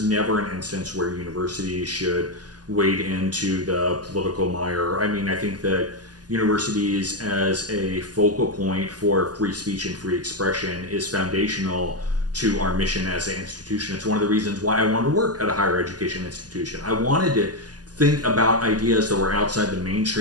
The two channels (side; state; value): left; late; 0.69 ms